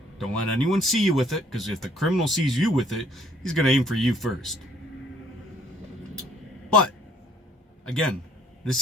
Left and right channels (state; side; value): normal; both; correlation 0.61